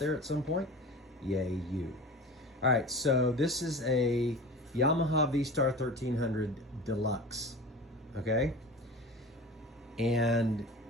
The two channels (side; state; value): both; normal; correlation 0.35